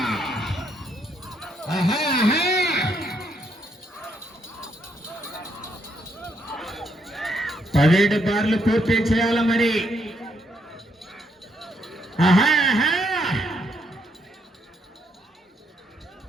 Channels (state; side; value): normal; both; correlation 0.75